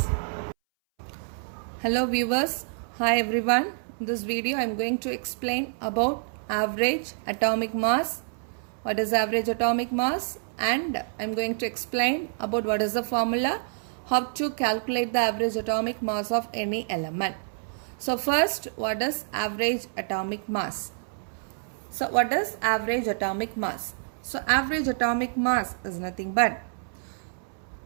Hello viewers, hi everyone. In this video I am going to explain about average atomic mass. What is average atomic mass, and I am going to explain about what is the formula, how to calculate the average atomic mass of any element. So first, what is average atomic mass? So what is average atomic mass? So average atomic mass is nothing but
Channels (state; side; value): silent; left; 60 dB below the other